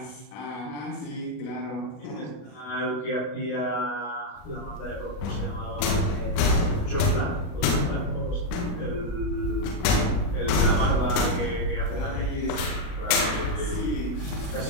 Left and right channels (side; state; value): right; late; 40 ms